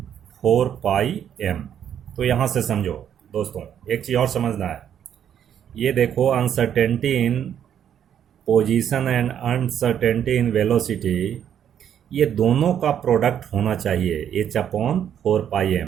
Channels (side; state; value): left; quieter; 9.4 dB